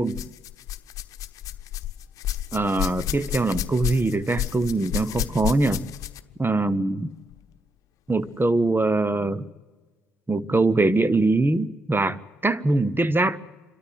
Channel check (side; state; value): both; normal; correlation 0.81